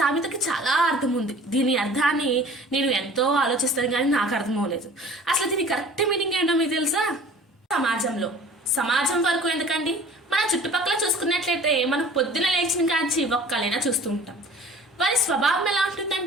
చాలా అర్థం ఉంది. దీని అర్థాన్ని నేను ఎంతో ఆలోచిస్తాను కానీ నాకు అర్థం అవ్వలేదు. అసలు దీని కరెక్ట్ మీనింగ్ ఏంటో మీకు తెలుసా? సమాజం వరకు ఎందుకండి, మన చుట్టుపక్కల చూసుకున్నట్లయితే మనం పొద్దున లేచిన కాంచి ఒక్కలైనా చూస్తూ ఉంటాం. వారి స్వభావం ఎలా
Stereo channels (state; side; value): normal; both; correlation 0.46